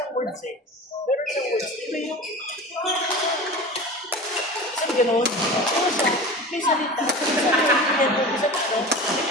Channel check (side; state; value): both; normal; correlation 0.33